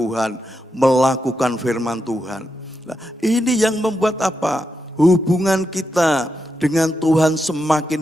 melakukan firman Tuhan. Nah, ini yang membuat apa? Hubungan kita dengan Tuhan semakin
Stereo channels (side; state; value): both; normal; correlation 0.85